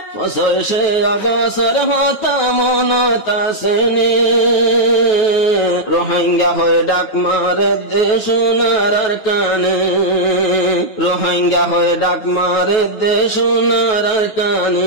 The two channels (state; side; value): late; right; 9.3 ms